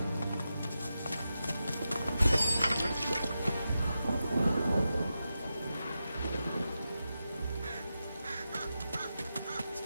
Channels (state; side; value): inverted; both; correlation -0.90